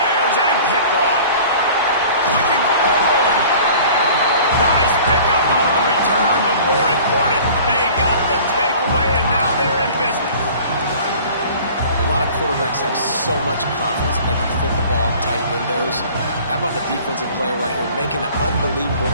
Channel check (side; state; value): both; inverted; correlation -0.46